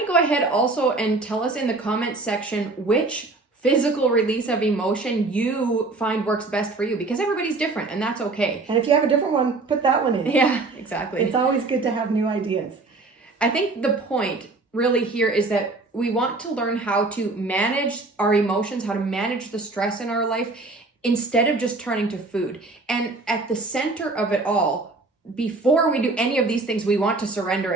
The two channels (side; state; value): left; quieter; 3.4 dB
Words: you go ahead also and tell us in the comments section which physical release of emotion you find works best for you, because everybody's different and that's okay. And if you have a different one, put that one in. Yeah, exactly. It's always good to have new ideas. I think the point really here is that we want to learn how to manage our emotions, how to manage the stress in our life instead of just turning to food. And at the center of it all, before we do any of these things, we want to surrender